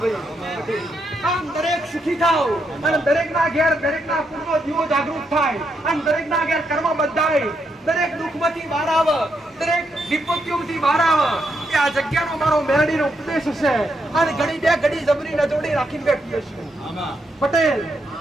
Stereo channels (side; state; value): both; normal; correlation 0.80